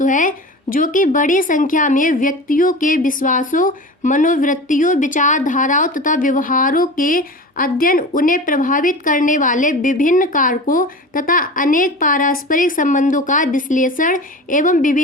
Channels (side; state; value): both; normal; correlation 0.33